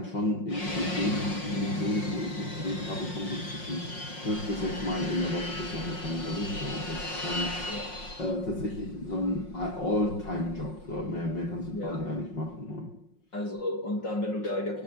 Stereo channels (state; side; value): late; right; 5.5 ms